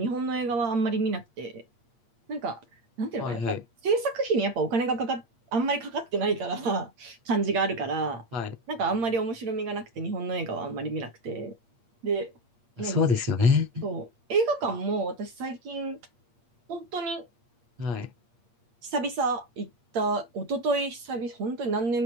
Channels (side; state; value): left; late; 8.5 ms